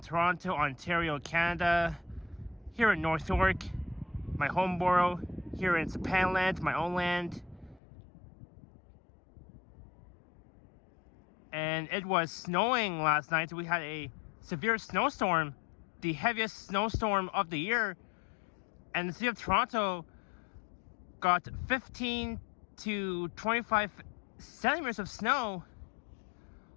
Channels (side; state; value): right; drops out; at 7.8 s